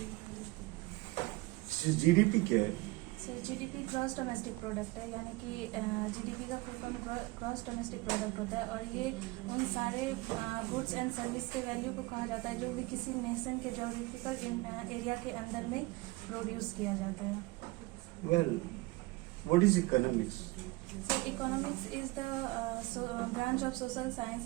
जीडीपी क्या है? Sir, GDP gross domestic product है। यानी कि GDP का full form gross domestic product होता है और ये उन सारे गुड्स एंड सर्विस के वैल्यू को कहा जाता है जो भी किसी नेशन के जोग्राफिकल एरिया के अंदर में प्रोड्यूस किया जाता है। Well, what is economics? So economics is the branch of social science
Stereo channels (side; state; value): left; quieter; 22.3 dB